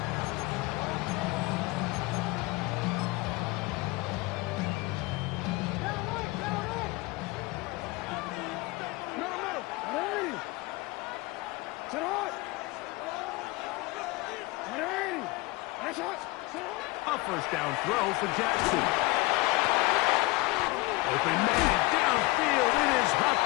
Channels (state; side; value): quieter; right; 22.4 dB